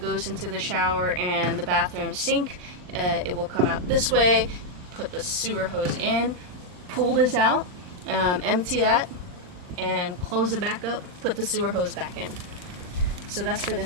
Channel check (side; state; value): left; late; 39 ms